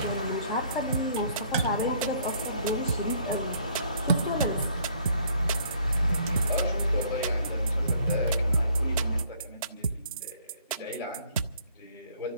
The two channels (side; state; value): both; inverted; correlation -0.61